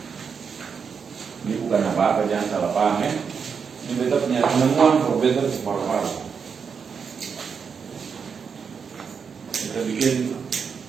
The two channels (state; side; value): quieter; left; 6.2 dB